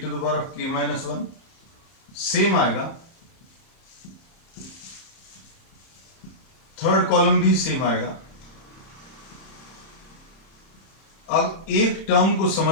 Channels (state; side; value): late; right; 30 ms